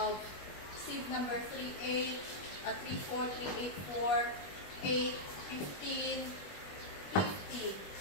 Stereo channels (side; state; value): right; late; 21 ms